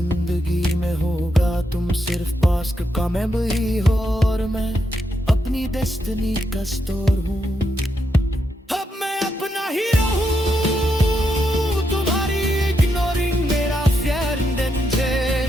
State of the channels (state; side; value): normal; both; correlation 0.82